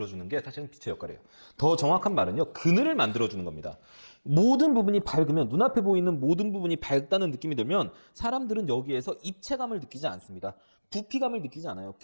게 사실은 빛의 역할이에요. 더 정확한 말은요. 그늘을 만들어주는 겁니다. 모든 부분이 밝으면 눈앞에 보이는 모든 부분이 밝다는 느낌이 들면 사람들은 여기에서 입체감을 느끼지 않습니다. 부피감을 느끼지 않아요.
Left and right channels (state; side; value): inverted; both; correlation -1.00